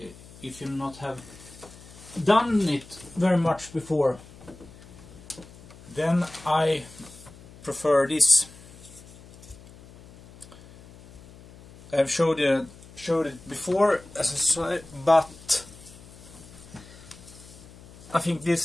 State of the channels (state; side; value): noise; left; hum, 20 dB below the sound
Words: if you not have done it very much before, then I prefer this. I've showed it before, as I said, but I think